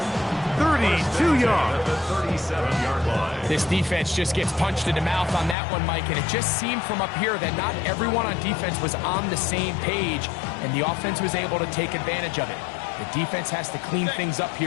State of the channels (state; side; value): drops out; right; at 5.6 s